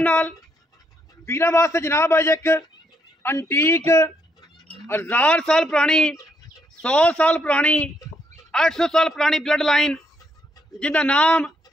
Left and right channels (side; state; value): both; normal; correlation 0.75